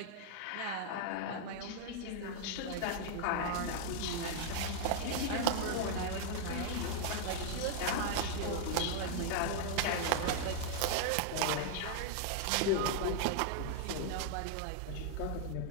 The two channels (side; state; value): both; different; correlation 0.00